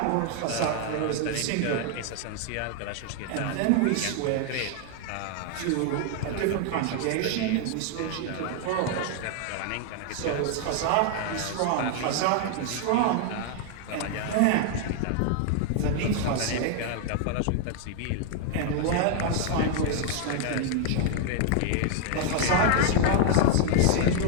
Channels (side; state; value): both; different; correlation 0.00